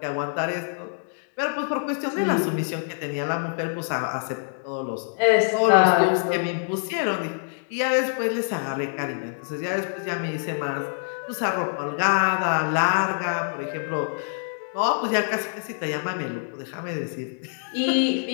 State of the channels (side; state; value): right; silent; digital silence